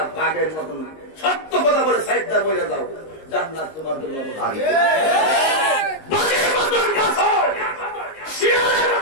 বাঘের মতন না, সত্য কথা বলে সাইডটা বইলে যাও, জান্নাত তোমার জন্য বাঘের মতন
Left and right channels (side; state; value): right; late; 19 ms